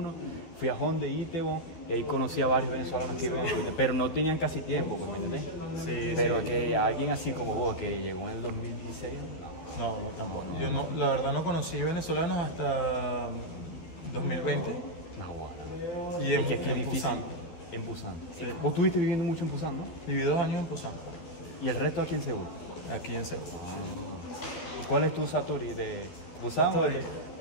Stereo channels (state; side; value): late; right; 12 ms